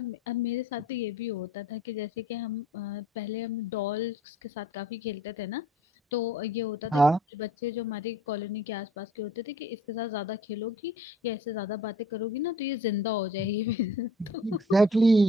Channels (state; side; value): normal; both; correlation 0.51